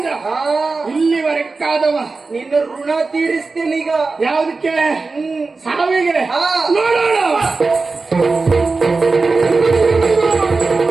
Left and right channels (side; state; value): left; quieter; 4.0 dB